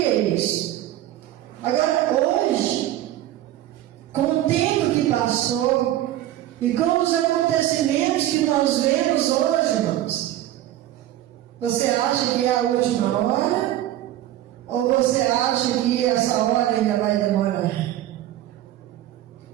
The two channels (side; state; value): left; quieter; 13.5 dB